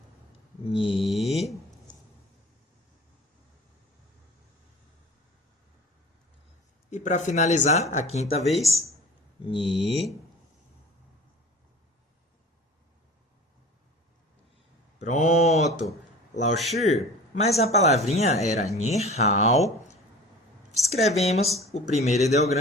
Ni. E para finalizar, a quinta vez, Ni. Pronto. 老师, mas a palavrinha era 你好. Escrevemos o primeiro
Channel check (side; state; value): both; normal; correlation 0.40